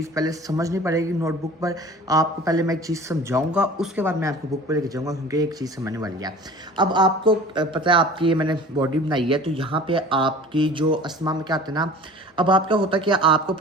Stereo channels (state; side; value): normal; both; correlation 0.43